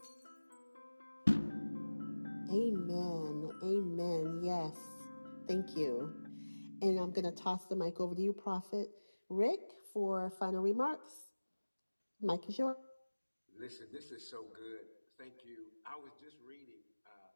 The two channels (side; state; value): both; inverted; correlation -1.00